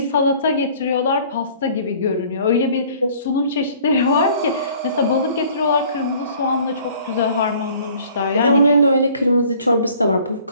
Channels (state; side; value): inverted; both; correlation -0.53